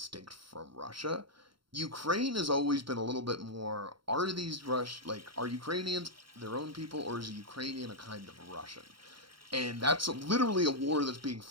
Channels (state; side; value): late; left; 0.73 ms